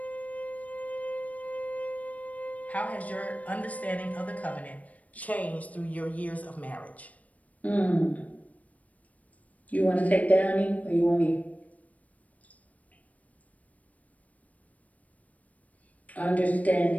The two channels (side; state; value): right; late; 0.070 ms